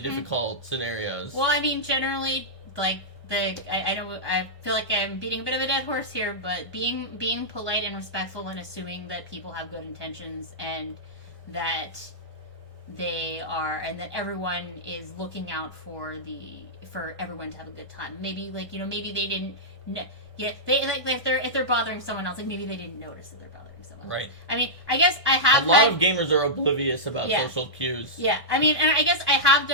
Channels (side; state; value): left; late; 1.6 ms